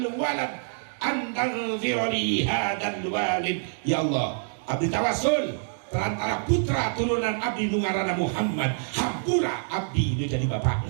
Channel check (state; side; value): silent; left; digital silence